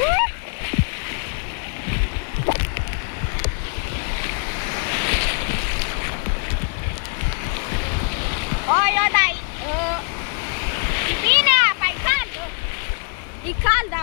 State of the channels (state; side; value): quieter; right; 37.5 dB